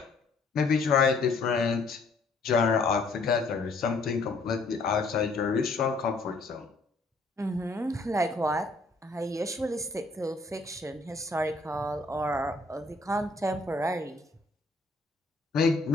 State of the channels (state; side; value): quieter; right; 3.4 dB